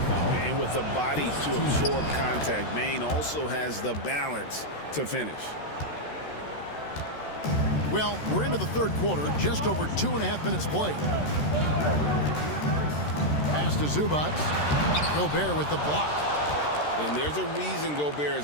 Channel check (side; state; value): right; late; 13 ms